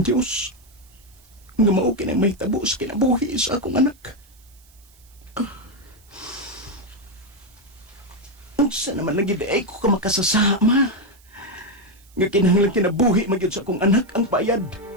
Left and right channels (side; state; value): right; noise; hiss, 29 dB below the sound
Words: Diyos nga mao kinang may tabo sa kinabuhi sa akong anak. Unsa naman nagiday ko ka makasasama nga kinahanglan kinabuhi magyud sa akong anak ang bayad.